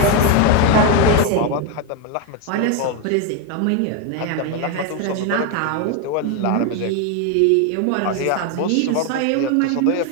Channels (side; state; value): both; different; correlation 0.02